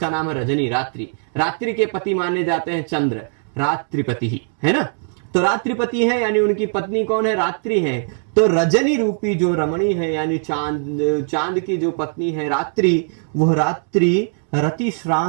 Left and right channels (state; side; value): silent; left; digital silence